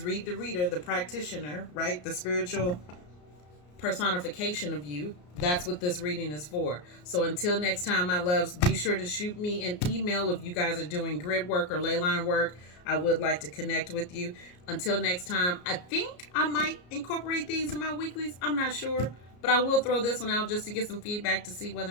Read the Reader, the practitioner, right? The spiritual personification of you. That's what this reading is for. So until next time, my loves, be sure to shoot me an email if you guys are doing grid work or ley line work. I would like to connect with you. Until next time, I think I might incorporate these in my weeklies. I'm not sure, but I will throw this one out just to get some feedback to see whether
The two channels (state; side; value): late; right; 34 ms